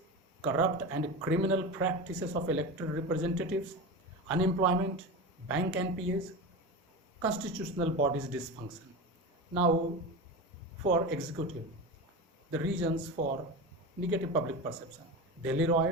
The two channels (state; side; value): normal; both; correlation 0.25